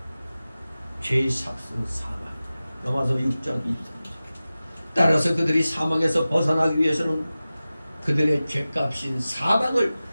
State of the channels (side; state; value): both; inverted; correlation -0.96